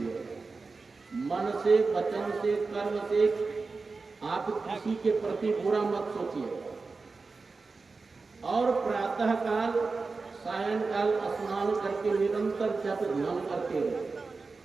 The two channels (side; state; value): left; quieter; 4.1 dB